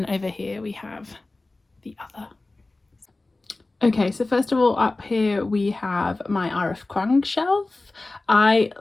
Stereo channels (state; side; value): quieter; right; 3.1 dB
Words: over here we have the other. Okay, so first of all, up here we have my R.F. Kuang shelf. I